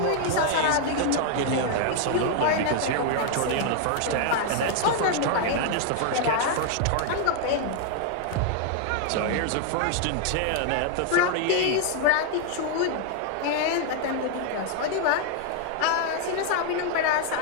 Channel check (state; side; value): different; both; correlation 0.00